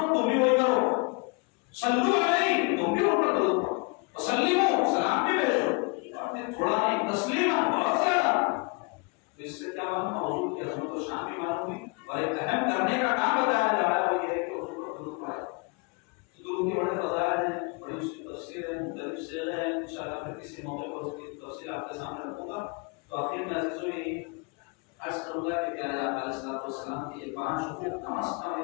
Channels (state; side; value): quieter; right; 31.1 dB